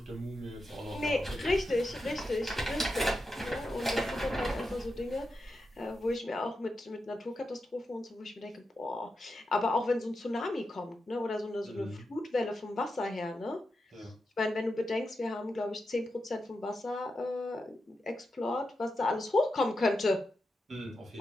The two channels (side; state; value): both; normal; correlation 0.88